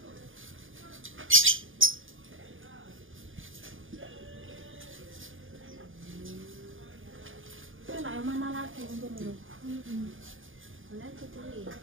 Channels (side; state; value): left; late; 0.58 ms